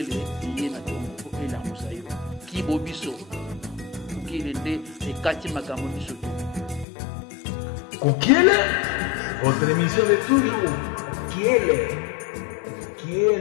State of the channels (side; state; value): right; drops out; at 6.9 s